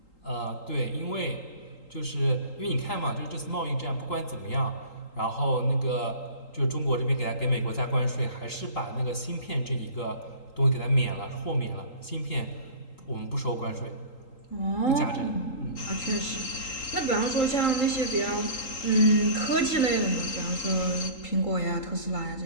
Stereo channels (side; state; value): right; late; 3.8 ms